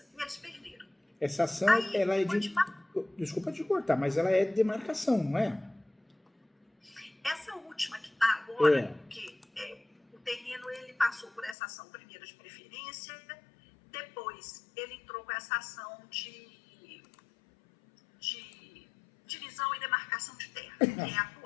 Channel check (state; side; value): drops out; right; at 11.6 s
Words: e eles perderam. Essa ação, ela é de... Desculpa te cortar, mas ela é de demarcação, não é? Essa última que está agora, porque o terreno ele passou por essa ação primeiro de preferência, depois ele entrou com essa ação de divisão e demarcação de terra, que é